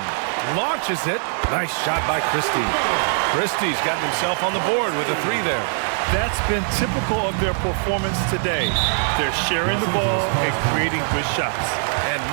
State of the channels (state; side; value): silent; left; 58 dB below the other